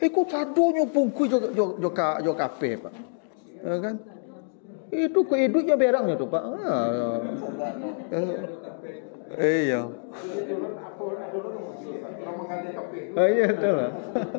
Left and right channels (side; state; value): right; silent; digital silence